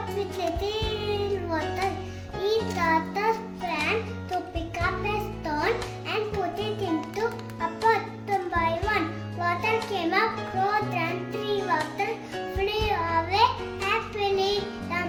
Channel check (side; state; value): both; identical; correlation 1.00